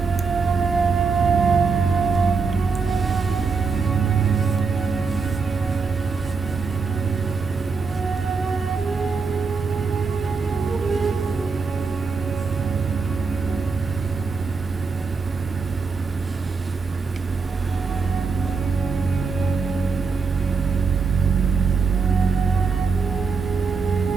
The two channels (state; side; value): quieter; left; 4.8 dB